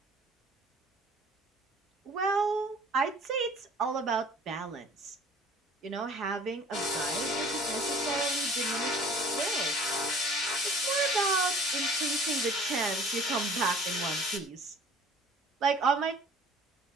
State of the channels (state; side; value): normal; both; correlation 0.48